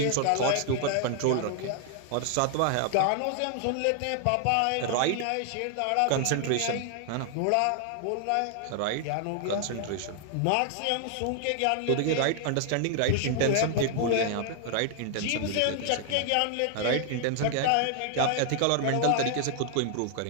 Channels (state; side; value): different; both; correlation 0.00